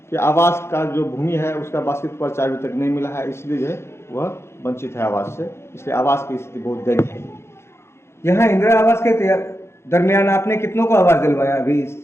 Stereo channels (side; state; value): right; late; 0.12 ms